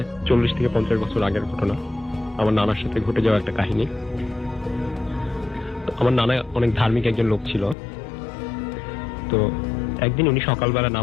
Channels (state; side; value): drops out; right; at 7.8 s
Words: 40 থেকে 50 বছর আগের ঘটনা। আমার নানার সাথে ঘটে যাওয়া একটা কাহিনী। আমার নানা অনেক ধার্মিক একজন লোক ছিল। তো একদিন উনি সকালবেলা